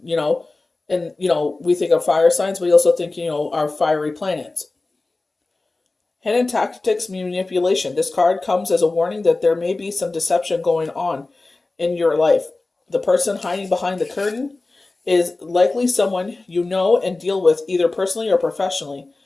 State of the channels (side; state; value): right; quieter; 3.3 dB